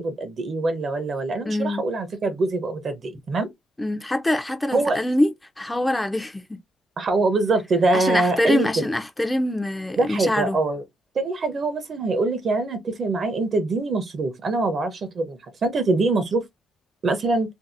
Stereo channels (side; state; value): both; normal; correlation 0.79